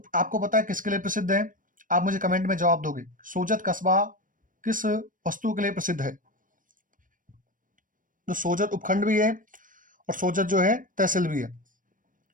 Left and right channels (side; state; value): left; late; 0.39 ms